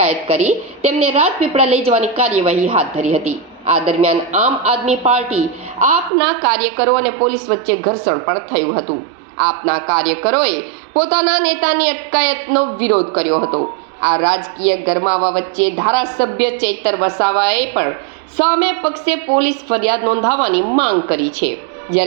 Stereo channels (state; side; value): drops out; left; at 6.1 s